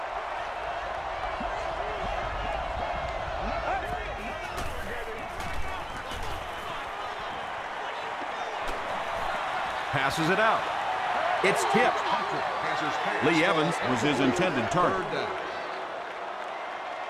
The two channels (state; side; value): identical; both; correlation 1.00